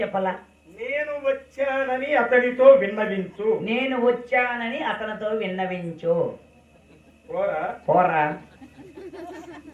చెప్పాలా? నేను వచ్చానని అతనితో విన్నవించు. నేను వచ్చానని అతనితో విన్నవించు. పోరా పోరా.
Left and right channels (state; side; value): identical; both; correlation 1.00